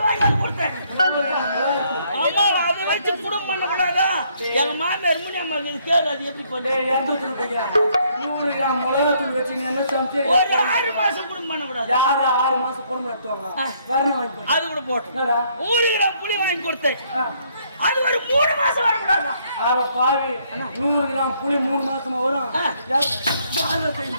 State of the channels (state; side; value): inverted; both; correlation -0.68